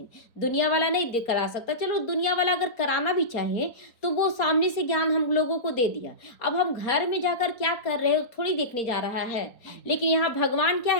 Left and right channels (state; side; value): late; right; 4.3 ms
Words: दुनिया वाला नहीं करा सकता, चलो दुनिया वाला अगर कराना भी चाहे तो वो सामने से ज्ञान हम लोगों को दे दिया, अब हम घर में जाकर क्या कर रहे हो थोड़ी देखने जा रहा है। लेकिन यहाँ भगवान क्या